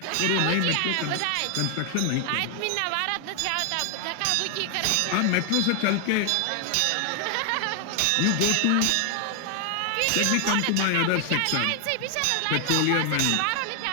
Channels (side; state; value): both; different; correlation 0.00